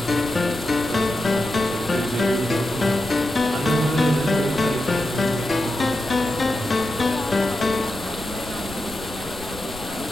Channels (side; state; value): left; noise; rumble, 15 dB below the sound